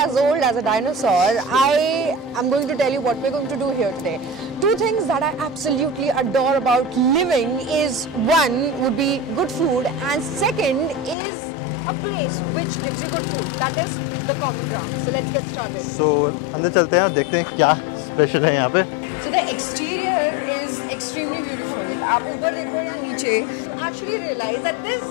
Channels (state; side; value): drops out; right; at 11.2 s